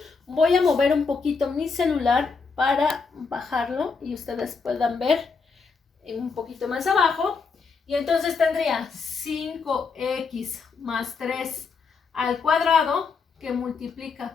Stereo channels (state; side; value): quieter; right; 4.9 dB